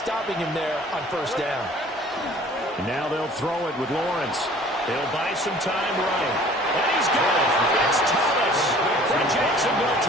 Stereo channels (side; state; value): both; normal; correlation 0.50